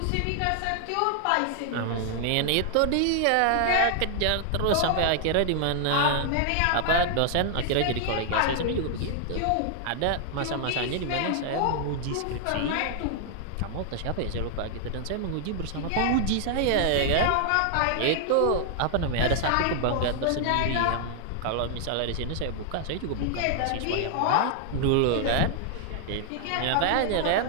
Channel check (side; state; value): both; different; correlation 0.00